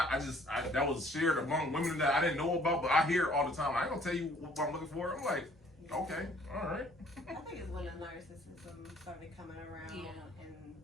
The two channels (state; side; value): normal; both; correlation 0.58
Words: that was shared among women that I didn't know about, but I hear it all the time. I ain't gonna tell you what I'm looking for. I'm like, okay, all right. I think it's when the narcissism started coming around and